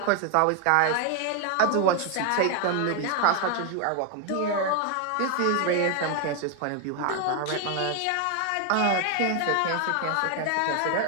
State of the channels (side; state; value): both; different; correlation 0.01